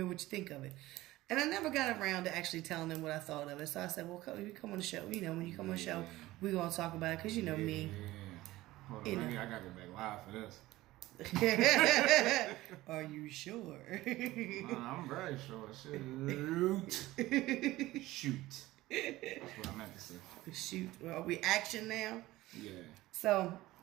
what you think of it. And I never got around to actually telling them what I thought of it. So I said, well, you come on the show. You know, when you come on the show, we're going to talk about it because you know me. Yeah. Hold on, I got to go back live for this. Are you sure? I'm very sure. Shoot. That's what I meant to say. Shoot. Are we action now? Yeah. So,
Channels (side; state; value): left; quieter; 17.6 dB